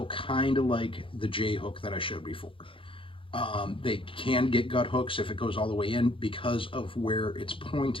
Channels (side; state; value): right; late; 0.25 ms